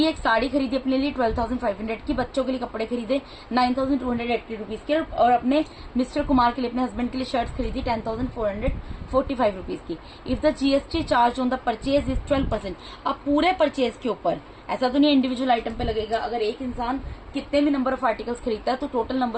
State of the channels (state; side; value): identical; both; correlation 1.00